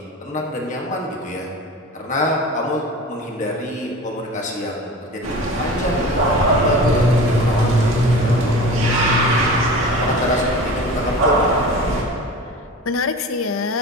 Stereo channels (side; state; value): both; normal; correlation 0.35